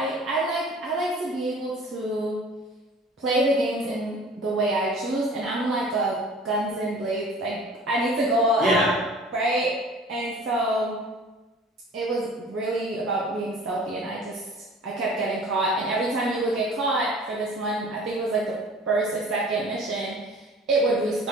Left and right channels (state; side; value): normal; both; correlation 0.46